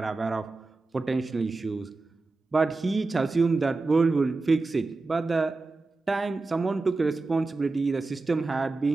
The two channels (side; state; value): left; quieter; 3.5 dB